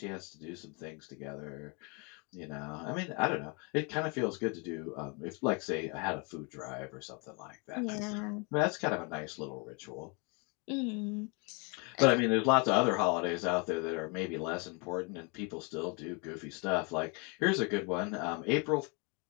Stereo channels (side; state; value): right; quieter; 32.7 dB